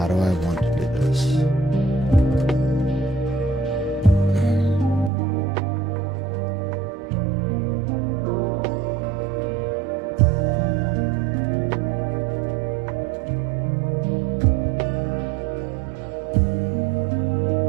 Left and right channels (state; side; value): drops out; left; at 5.1 s